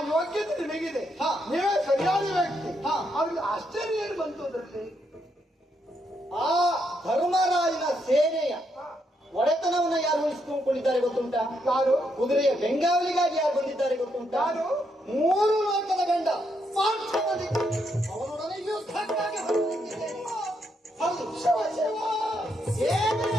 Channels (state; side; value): normal; both; correlation 0.78